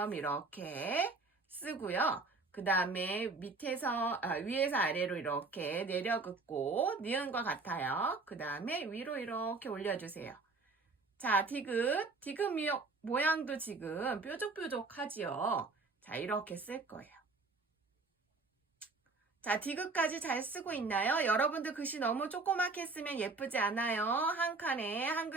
이렇게 쓰고요. 그 다음에 위에서 아래로 이렇게 내려긋고 니은과 같아요. 그 다음에 위로 이렇게 올려주세요. 자, 디귿 모양도 지금 뾰족뾰족하지요. 자, 이렇게 쓸 거예요. 자, 디귿까지 잘 쓰고 있나요? 여러분들 글씨 너무 조그맣게 쓰면 예쁘지 않아요. 한 칸에 한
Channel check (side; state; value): left; quieter; 3.7 dB